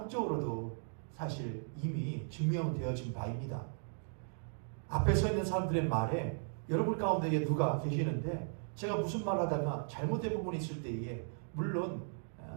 사실 이미 증명되어진 바입니다. 앞에 서 있는 사람들의 말에 여러분 가운데 누가 계시는데 제가 무슨 말 하다가 잘못된 부분이 있을 때에 물론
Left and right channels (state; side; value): silent; left; digital silence